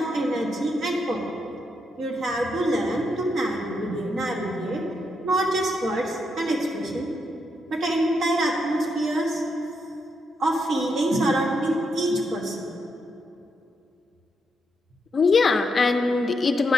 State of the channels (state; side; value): normal; both; correlation 0.81